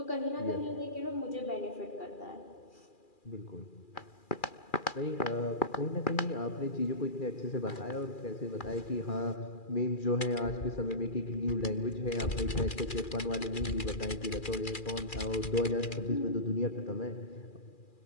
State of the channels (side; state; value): right; late; 2.4 ms